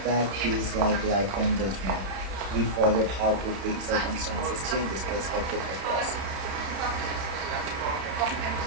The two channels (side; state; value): left; late; 31 ms